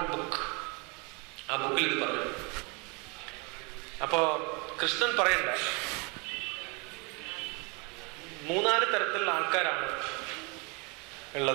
ബുക്ക്. ആ ബുക്കിൽ ഇത് പറഞ്ഞു. അപ്പോ കൃഷ്ണൻ പറയണ്ട, 3-4 തരത്തിലുള്ള ആൾക്കാരാണ്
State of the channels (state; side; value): quieter; left; 30.6 dB